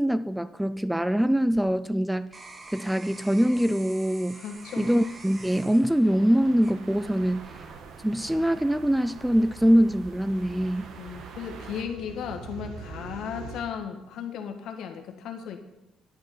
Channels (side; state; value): both; normal; correlation 0.97